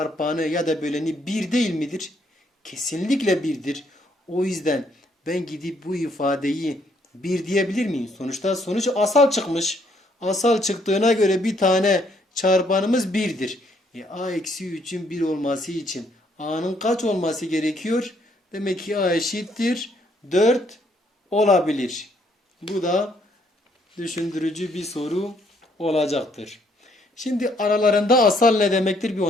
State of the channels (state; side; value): normal; both; correlation 0.69